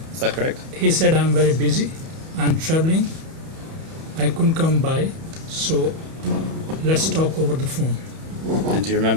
is that correct? He said, I'm very busy, I'm traveling, I couldn't come by, so let's talk over the phone. And do you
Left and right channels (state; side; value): late; left; 31 ms